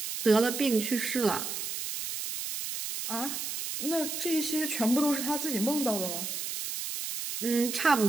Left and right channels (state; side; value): noise; right; hiss, 5 dB below the sound